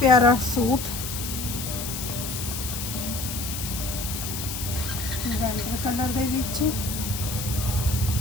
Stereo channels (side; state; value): left; noise; hiss, 6 dB below the sound